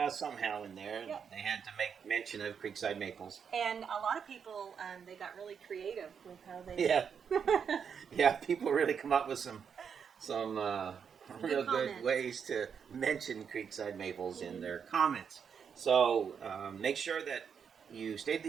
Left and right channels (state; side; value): quieter; left; 7.0 dB